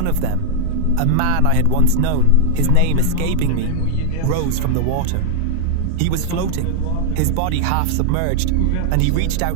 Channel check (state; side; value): different; both; correlation 0.00